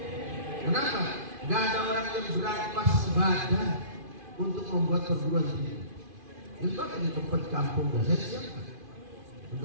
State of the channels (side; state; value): left; late; 2.5 ms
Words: Kenapa? Gak ada orang yang berampas badan untuk membuat perguruan tinggi. Itu akan di tempat kampung saya siapkan.